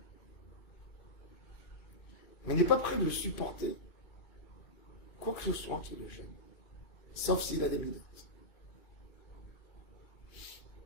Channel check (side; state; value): right; late; 2.5 ms